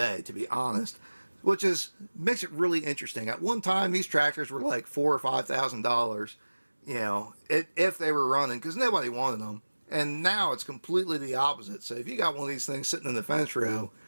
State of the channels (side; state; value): both; inverted; correlation -1.00